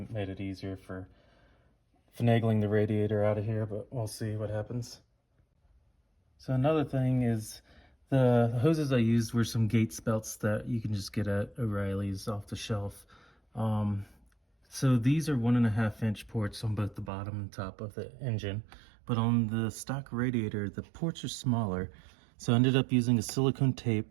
made it easier for finagling the radiator out of here, but we'll see what happens. So another thing is the hoses I used were some Gates belts that you can just get at O'Reilly's off the shelf. So these are 1.5-inch ports on both the bottom and top of the engine, but on the stock radiator the ports are smaller. So I ended up using a silicone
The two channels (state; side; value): drops out; left; at 17.1 s